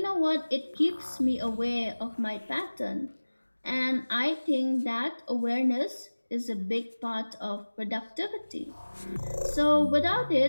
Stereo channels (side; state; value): both; inverted; correlation -1.00